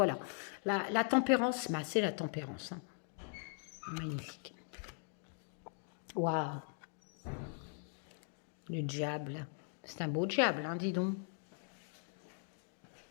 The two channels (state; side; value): silent; right; 51 dB below the other